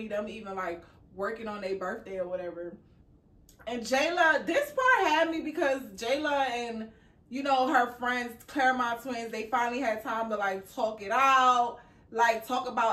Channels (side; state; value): both; identical; correlation 1.00